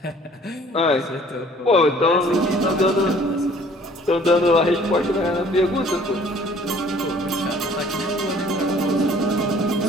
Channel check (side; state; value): both; normal; correlation 0.55